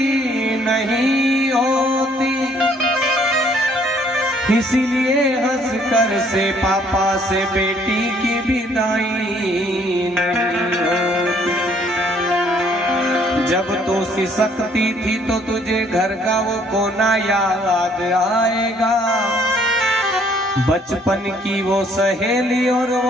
नहीं होती, इसीलिए हंसकर से पापा से बेटी की विदाई नहीं होती। जब तो सिसकती थी तो तुझे घर का वो कोना याद आएगा। बचपन की वो सहेली और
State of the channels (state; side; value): normal; both; correlation 0.63